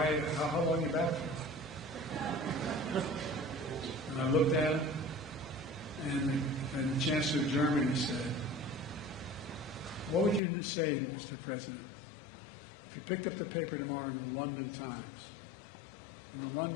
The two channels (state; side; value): drops out; right; at 10.4 s